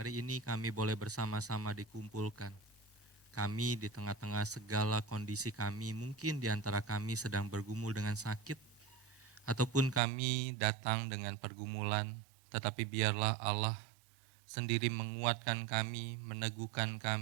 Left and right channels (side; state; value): left; drops out; at 10.0 s